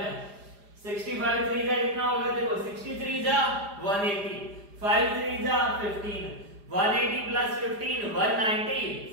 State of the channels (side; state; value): left; late; 4.9 ms